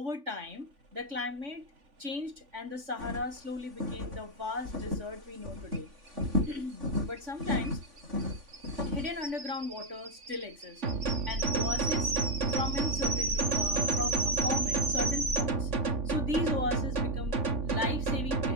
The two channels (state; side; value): late; left; 3.5 ms